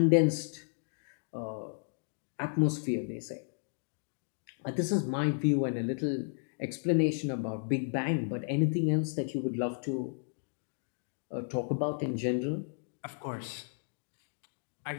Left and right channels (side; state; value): right; silent; digital silence